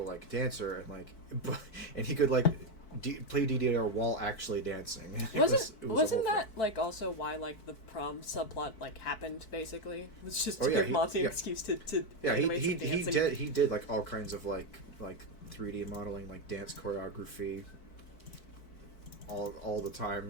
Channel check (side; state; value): right; late; 4.6 ms